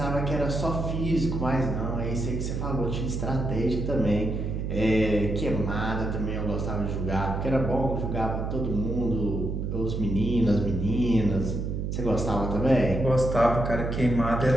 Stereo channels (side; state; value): right; noise; hum, 2 dB below the sound